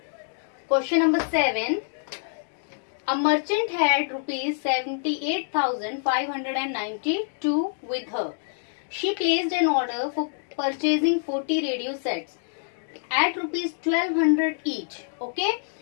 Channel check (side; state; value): right; silent; digital silence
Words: question number 7. A merchant had rupees 78,592 with her. She placed an order for purchasing 40 radio sets at rupees 1200 each. Okay,